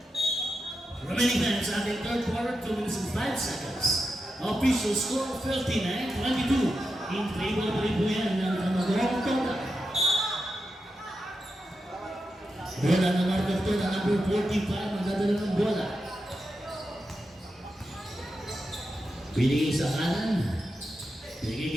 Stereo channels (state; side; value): normal; both; correlation 0.88